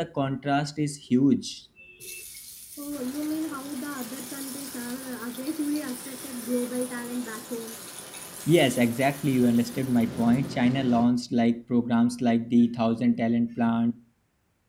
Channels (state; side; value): identical; both; correlation 1.00